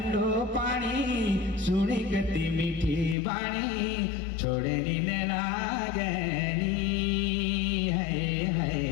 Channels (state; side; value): drops out; right; at 3.2 s